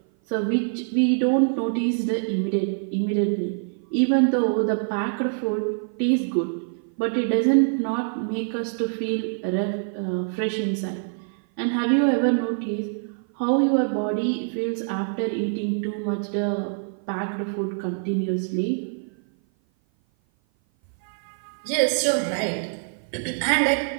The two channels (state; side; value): silent; left; 56 dB below the other